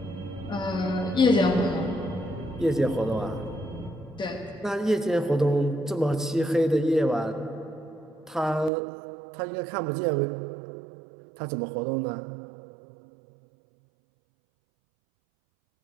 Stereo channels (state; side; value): drops out; left; at 8.7 s